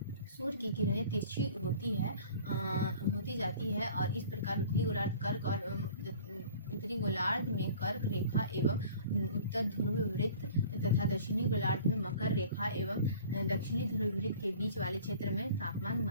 सूर्य की किरणें तिरछी होती जाती है, और इस प्रकार उत्तरी गोलार्ध में कर्क रेखा एवं उत्तर ध्रुव वृत्त तथा दक्षिणी गोलार्ध में मकर रेखा एवं दक्षिणी ध्रुव वृत्त के बीच वाले क्षेत्र में तापमान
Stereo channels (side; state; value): both; inverted; correlation -0.47